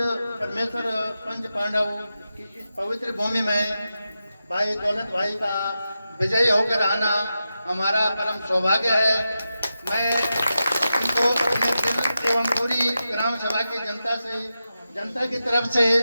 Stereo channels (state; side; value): inverted; both; correlation -0.90